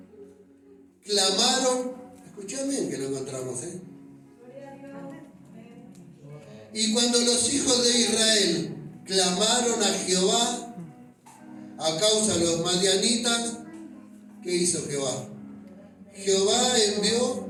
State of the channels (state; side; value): identical; both; correlation 1.00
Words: clamaron, escuchá bien que lo encontramos, Y cuando los hijos de Israel clamaron a Jehová a causa de los madianitas. ¿Qué hizo Jehová? Jehová envió